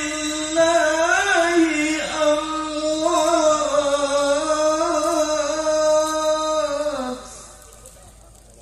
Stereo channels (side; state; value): both; identical; correlation 1.00